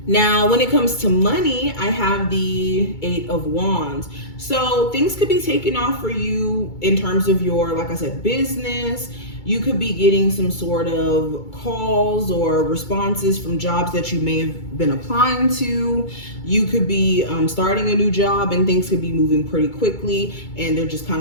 Now, when it comes to money, I have the Eight of Wands. So things could be taken off for you in terms of your, like I said, business. You could be getting some sort of calls or responses from jobs that you may have been applying to. You could be starting a new job and things could be moving pretty quickly and they're just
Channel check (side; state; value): right; late; 2.3 ms